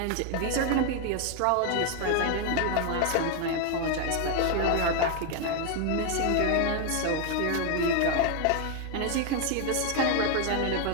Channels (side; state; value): both; different; correlation 0.01